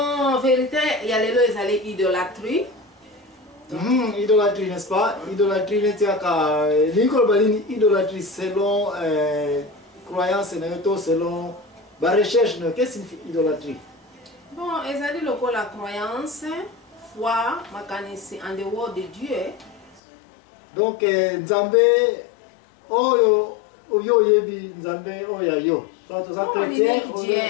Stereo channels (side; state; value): right; drops out; at 20.0 s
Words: vérité ya lelo ezali idolâtrie. Idolâtrie, n'est-ce pas? Idolâtrie netiaka likolo balini idolâtrie selon croyance na yo to selon ba recherche na qu'est-ce que signifie idolâtrie? Bon, ezali lokola croyance, foi, makanisi en dehors de Dieu. Donc Nzambe oyo oyo yebi Nzambe oyo yo. Soit ça chrétien,